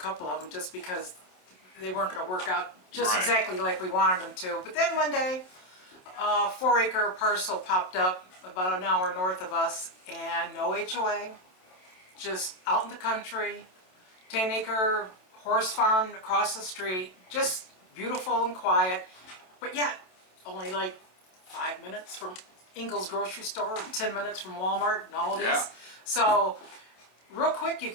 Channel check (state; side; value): late; right; 27 ms